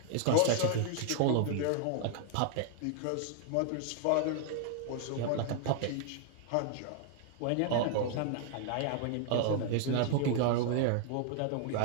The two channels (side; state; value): both; different; correlation -0.01